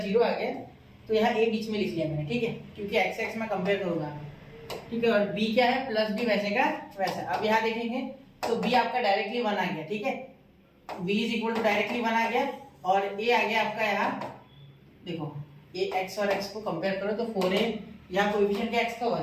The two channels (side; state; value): both; identical; correlation 1.00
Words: 0 आ गया, तो यहाँ a बीच में लिख लिया मैंने, ठीक है, क्योंकि x में कंपेयर करूंगा, ठीक है। और b क्या है, प्लस b वैसे का वैसा। अब यहाँ देखेंगे तो b आपका डायरेक्टली 1 आ गया, ठीक है, b is equal to directly 1 आ गया, और a आ गया आपका यहाँ, देखो ये x और x को कंपेयर करो तो 4a, यहाँ कोएफिशिएंट क्या x का